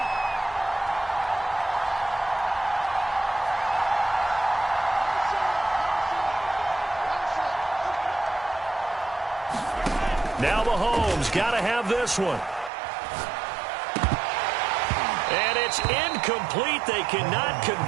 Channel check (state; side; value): drops out; left; at 12.7 s